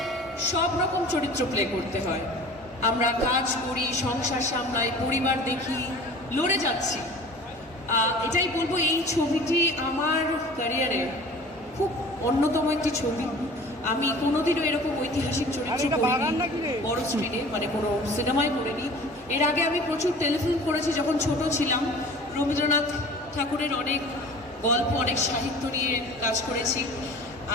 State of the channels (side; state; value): both; normal; correlation 0.43